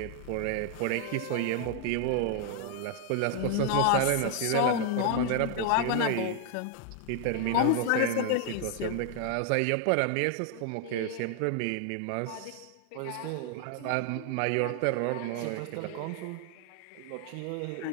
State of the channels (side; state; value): both; different; correlation 0.00